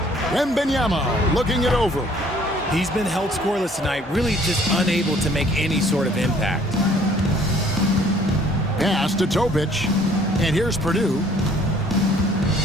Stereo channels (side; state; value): both; normal; correlation 0.58